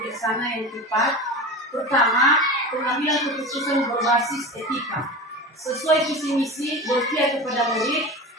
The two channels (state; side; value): normal; both; correlation 0.29